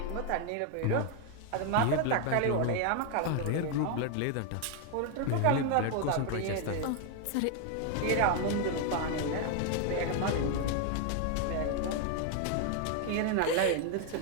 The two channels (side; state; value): both; different; correlation 0.01